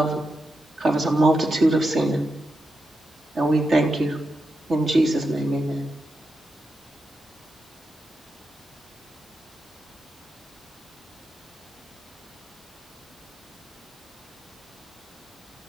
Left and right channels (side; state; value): both; normal; correlation 0.87